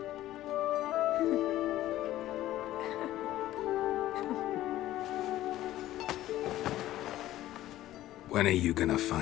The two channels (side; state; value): right; quieter; 14.5 dB